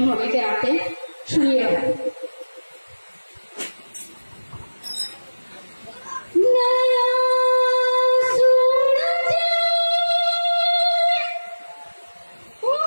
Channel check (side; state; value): both; inverted; correlation -1.00